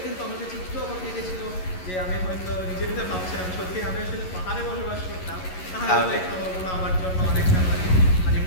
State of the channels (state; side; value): late; right; 11 ms